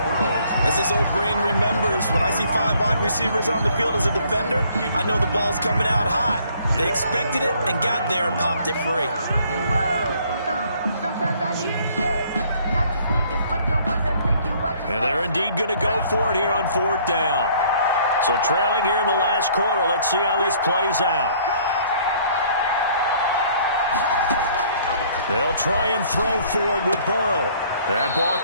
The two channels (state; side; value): inverted; both; correlation -0.60